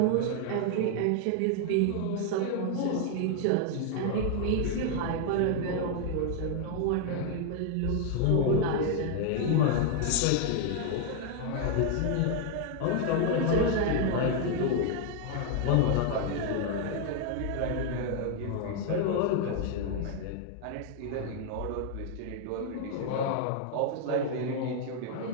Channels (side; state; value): both; different; correlation 0.00